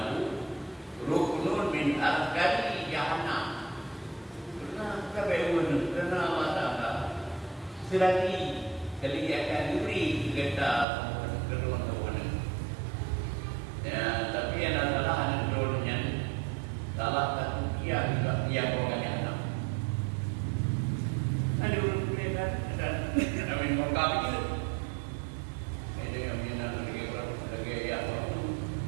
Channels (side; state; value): left; drops out; at 10.9 s